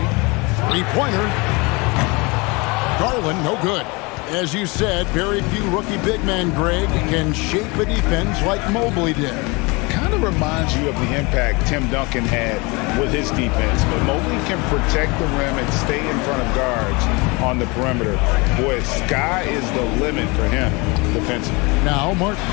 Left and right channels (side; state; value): right; quieter; 26.9 dB